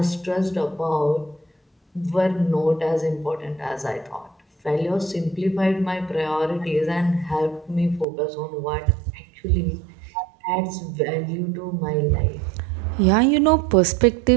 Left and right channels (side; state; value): left; drops out; at 8.1 s